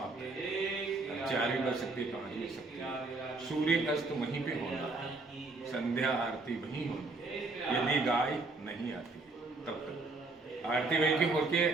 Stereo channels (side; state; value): left; quieter; 3.4 dB